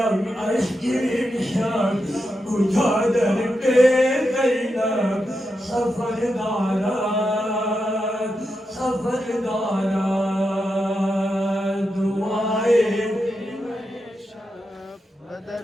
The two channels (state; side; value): normal; both; correlation 0.87